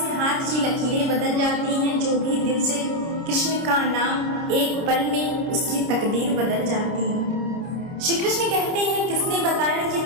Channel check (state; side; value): late; left; 30 ms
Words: हाथ की लकीरें बदल जाती हैं। जो भी दिल से कृष्ण का नाम एक पल में उसकी तकदीर बदल जाती है। श्री कृष्ण कहते हैं किसने बताया कि